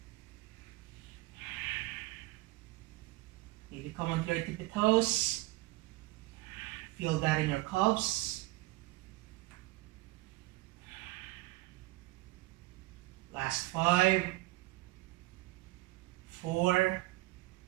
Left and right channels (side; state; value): left; quieter; 20.1 dB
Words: Maybe come onto your tippy toes. Feel that in your calves. Last 5, 4,